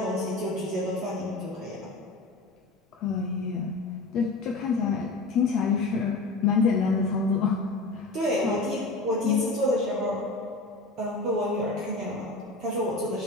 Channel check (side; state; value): right; quieter; 3.2 dB